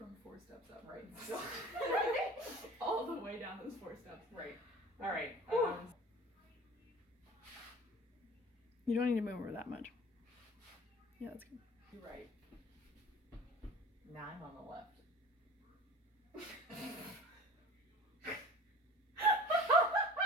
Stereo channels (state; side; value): normal; both; correlation 0.42